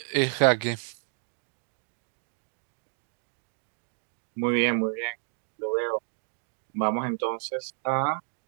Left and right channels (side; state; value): left; silent; digital silence